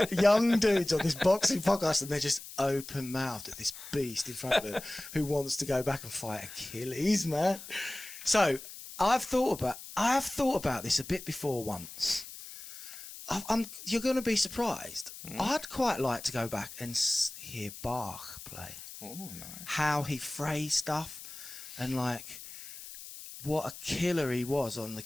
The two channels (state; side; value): noise; left; hiss, 13 dB below the sound